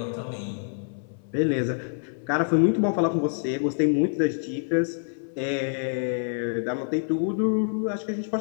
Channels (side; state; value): right; silent; 58 dB below the other